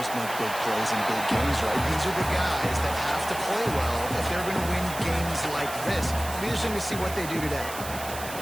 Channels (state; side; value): noise; right; hiss, 11 dB below the sound